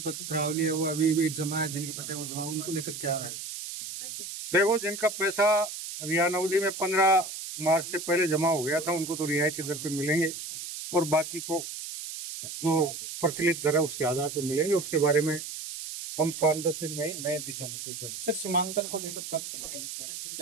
है वो अभी भी जमा है, जिनके पट्टे वो जमा, उनको लेकर क्या है? देखो, जिनका पैसा अभियान अवधि में 15 मार्च से पहले जमा हो गया था उनको तो रियायती दर पे मिलेंगे और बाकी को जो प्रचलित दर है उसके आधार पर मिलेंगे। उसके बारे में हम 5-10 दिन में नए दिशा निर्देश। सर, सीमांकन को लेकर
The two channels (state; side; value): noise; right; hiss, 8 dB below the sound